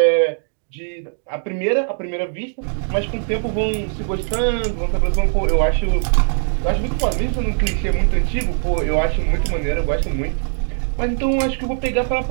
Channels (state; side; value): silent; left; 65 dB below the other